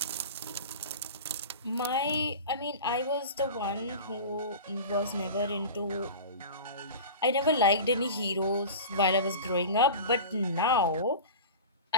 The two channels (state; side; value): inverted; both; correlation -0.32